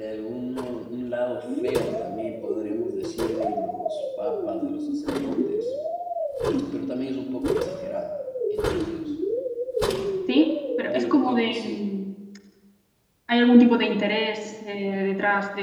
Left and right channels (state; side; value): identical; both; correlation 1.00